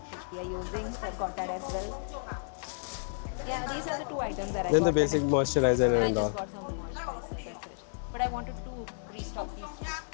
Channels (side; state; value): right; silent; digital silence